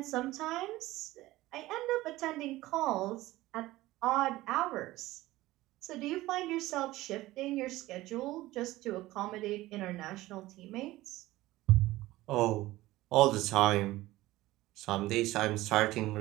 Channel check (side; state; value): left; quieter; 17.5 dB